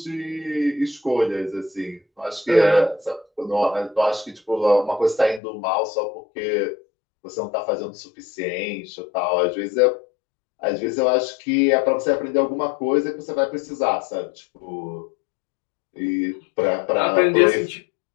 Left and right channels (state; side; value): drops out; right; at 5.4 s